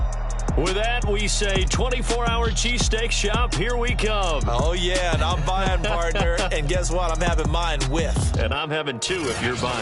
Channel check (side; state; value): both; identical; correlation 1.00